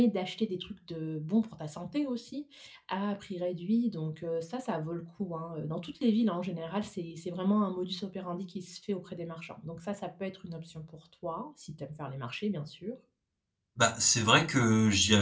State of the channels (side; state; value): both; identical; correlation 1.00